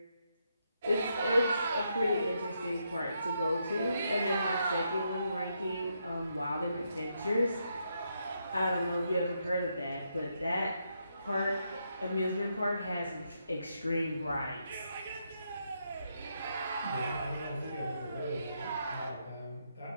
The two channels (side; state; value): both; inverted; correlation -0.80